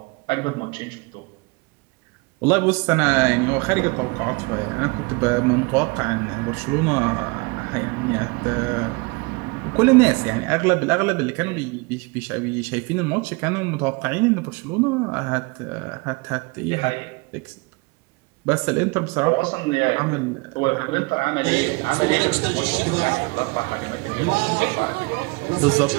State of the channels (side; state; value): left; quieter; 27.3 dB